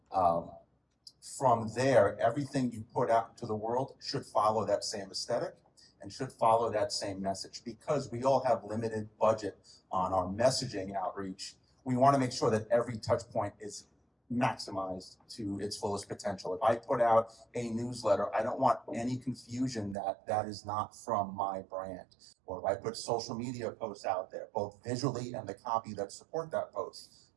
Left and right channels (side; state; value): left; drops out; at 20.0 s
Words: From there, everything you put out into the world should follow that same aesthetic and should follow that same message. Because we all have limited budget on our messaging outreach, we want to make sure that every touch point is maximized to its fullest potential. If I put out a newsletter, I don't want any confusion that that is not from my brand. Or if I put social media posts out there, both visually and the copy that support that post